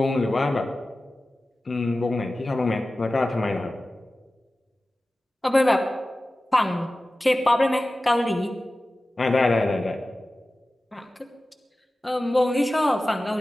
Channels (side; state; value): both; normal; correlation 0.96